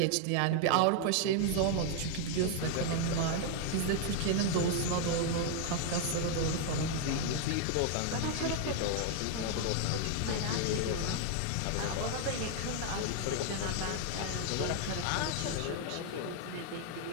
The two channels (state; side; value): different; both; correlation 0.00